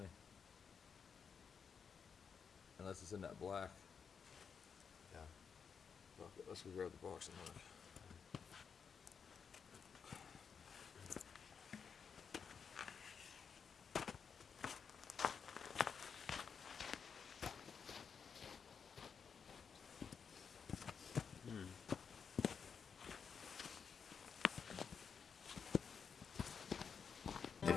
Unless it's in that black. Yeah. Okay, let's go grab the box and look.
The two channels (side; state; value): right; quieter; 6.4 dB